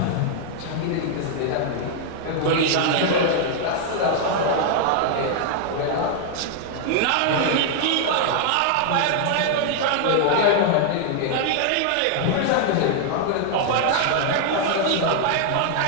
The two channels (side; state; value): both; different; correlation 0.00